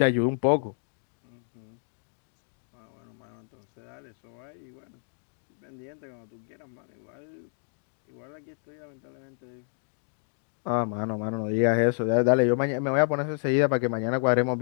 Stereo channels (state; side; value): silent; right; 55 dB below the other